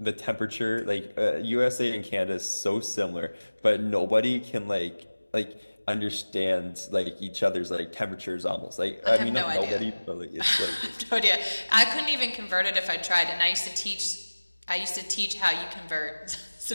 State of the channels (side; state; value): both; inverted; correlation -1.00